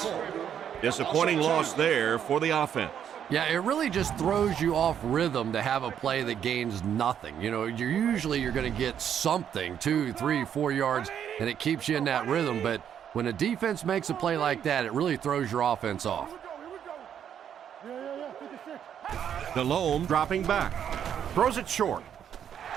Disappointing loss there for the offense. Yeah, it really just throws you off rhythm to have a play that gains nothing. You know, you're going to get something, 2, 3, 4 yards, and it keeps you in that rhythm. But when a defense makes a play like that, it really throws your offense off. Delhomme dropping back. Throws it short.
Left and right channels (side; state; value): left; quieter; 9.0 dB